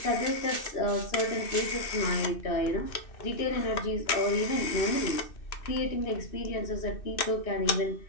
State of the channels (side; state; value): right; late; 2.6 ms